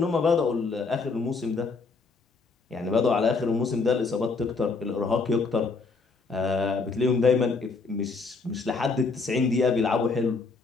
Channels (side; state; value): right; quieter; 4.2 dB